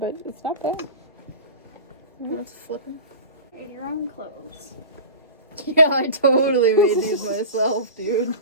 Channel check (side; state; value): both; inverted; correlation -0.33